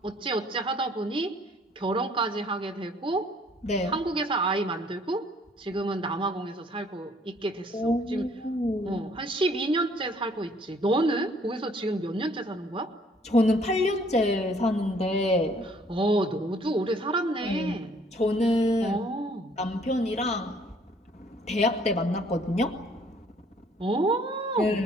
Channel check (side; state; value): both; normal; correlation 0.60